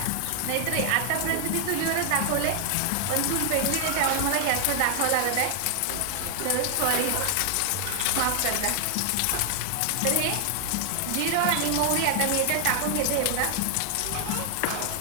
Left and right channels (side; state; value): both; different; correlation 0.00